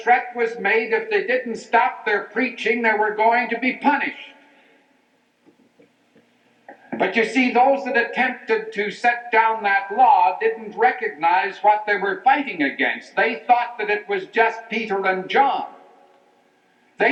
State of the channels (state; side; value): identical; both; correlation 1.00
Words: was made if they didn't stop their preaching, they were going to be punished. But you see, those that attempted to set down that law didn't recognize what they were fighting against. They thought that it was just Peter and John.